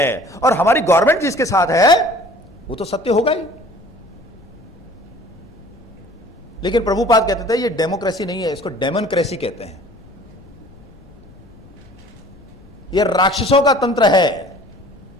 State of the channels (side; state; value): left; noise; rumble, 23 dB below the sound